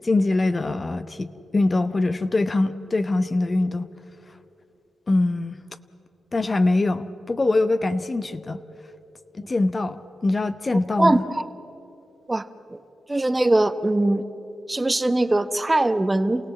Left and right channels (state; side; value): normal; both; correlation 0.96